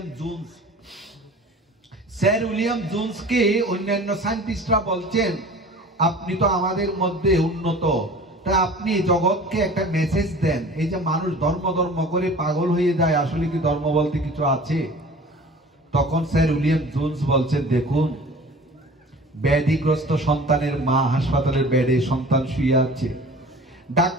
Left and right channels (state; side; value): normal; both; correlation 0.43